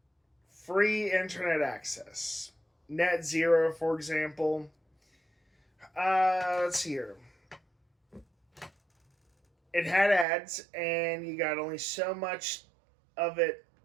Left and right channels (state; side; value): drops out; left; at 10.2 s